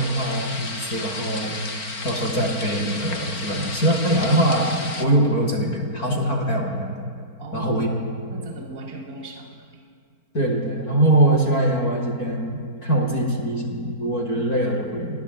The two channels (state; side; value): late; right; 4.4 ms